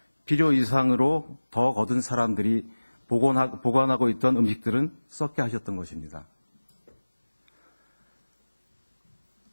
필요 이상으로 더 거둔 사람들이 보관하고 있던 음식들은 썩게 하셨던 것입니다.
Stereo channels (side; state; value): both; inverted; correlation -1.00